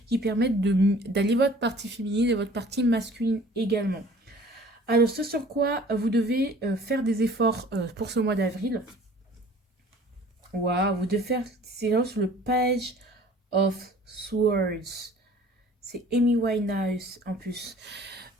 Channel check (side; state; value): both; normal; correlation 0.49